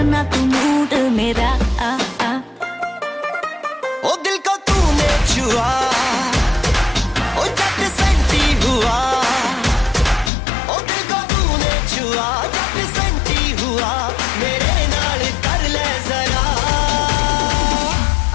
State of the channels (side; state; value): right; drops out; at 10.3 s